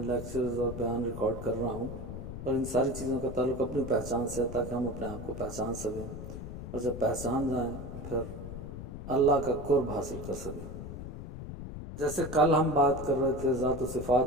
لیکچرز اور بیان ریکارڈ کر رہا ہوں، اور ان ساری چیزوں کا تعلق اپنی پہچان سے ہے تاکہ ہم اپنے آپ کو پہچان سکیں، اور جب پہچان جائیں تو پھر اللہ کا قرب حاصل کر سکیں. جیسے کل ہم بات کر رہے تھے ذات و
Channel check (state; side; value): noise; left; rumble, 9 dB below the sound